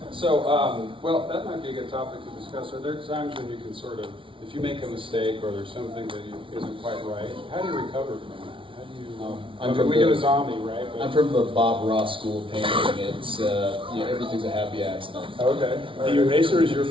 So, well, that might be a good topic to discuss. Are there times when you can sort of, if you make a mistake or there's something that isn't quite right, how do you recover from that? How do you? We do a zombie, right? I'm from the Bob Ross school of painting. It's everything's a happy accident. Okay. The eraser is your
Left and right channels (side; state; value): left; late; 0.25 ms